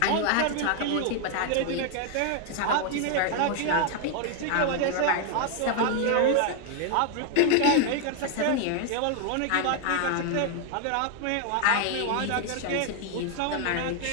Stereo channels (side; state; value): both; different; correlation 0.00